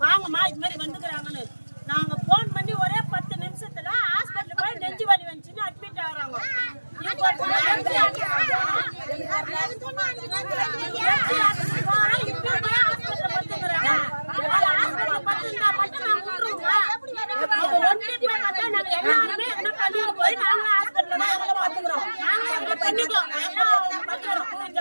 வாங்கம்மா இது மாதிரி வந்துக்கிறாங்கன்னு. நாங்க போன் பண்ணி ஒரே 10 நிமிஷத்துல ஹாஸ்பிட்டல் போய் நெஞ்சு வலி வந்துச்சுன்னு அட்மிட் ஆகுறாங்க.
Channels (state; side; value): inverted; both; correlation -1.00